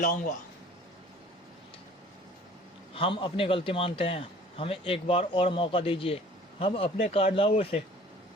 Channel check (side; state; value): both; normal; correlation 0.50